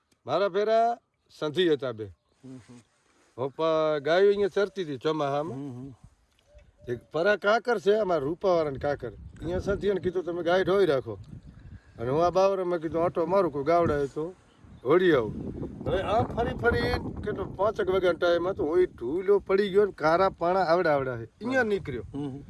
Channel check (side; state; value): both; identical; correlation 1.00